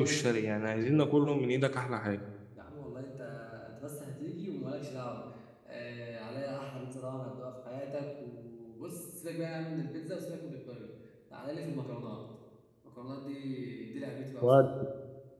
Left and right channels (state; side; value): identical; both; correlation 1.00